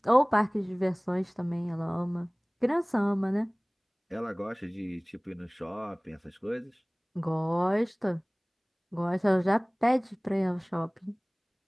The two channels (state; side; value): identical; both; correlation 1.00